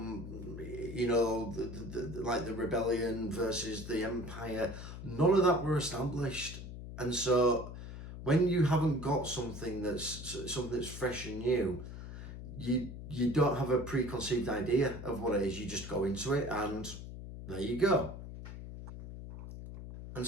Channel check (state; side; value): noise; left; hum, 10 dB below the sound